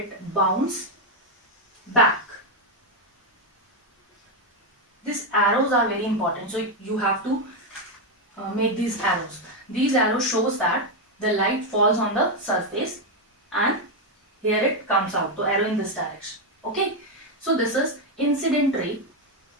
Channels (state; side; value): normal; both; correlation 0.05